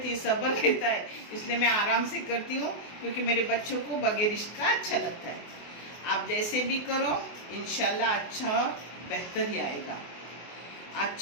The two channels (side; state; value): right; late; 24 ms